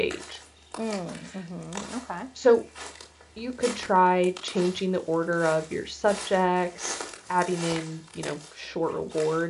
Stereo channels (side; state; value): both; identical; correlation 1.00